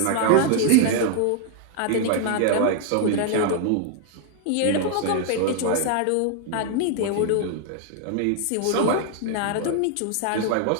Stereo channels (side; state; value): both; different; correlation 0.00